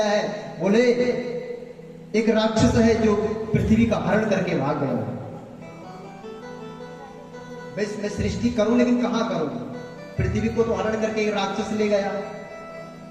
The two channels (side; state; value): both; identical; correlation 1.00